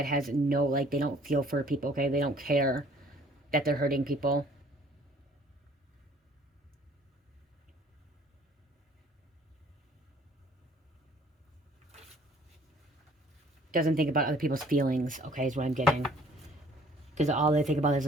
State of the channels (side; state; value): both; normal; correlation 0.56